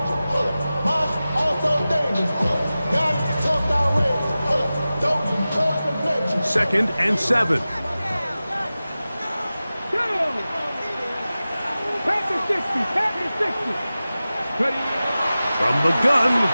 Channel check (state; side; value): inverted; both; correlation -0.96